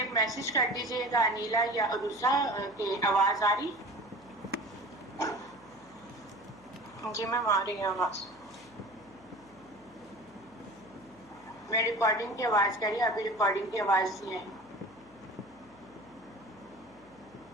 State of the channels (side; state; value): left; noise; hum, 26 dB below the sound